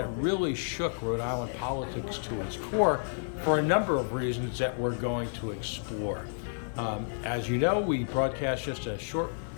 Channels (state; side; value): silent; right; digital silence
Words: really shook Rhode Island politics to its core for a number of reasons that we're going to explore. As you know, we broadcast just a short